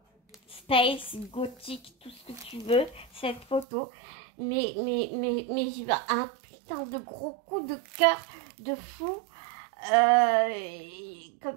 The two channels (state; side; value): drops out; left; at 3.7 s